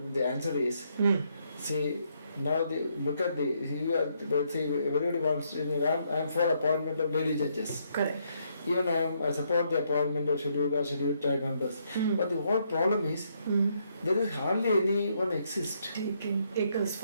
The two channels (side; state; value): both; inverted; correlation -0.74